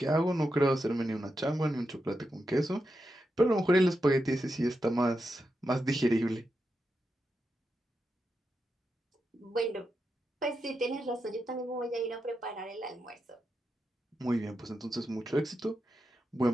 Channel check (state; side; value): normal; both; correlation 0.87